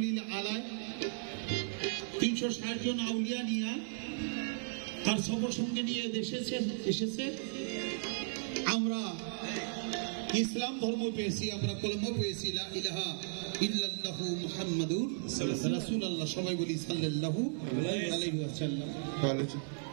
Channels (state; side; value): silent; left; 54 dB below the other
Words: আলাইহি 360 জন আউলিয়া নিয়ে তার সফর সঙ্গে নিয়ে এসেছে। আমরা ইসলাম ধর্ম পেয়েছি, আমরা কলমা পেয়েছি, লা ইলাহা ইল্লাল্লাহু মুহাম্মাদুর রাসূলুল্লাহ। সবাই বলি সাল্লাল্লাহু আলাইহি ওয়াসাল্লাম।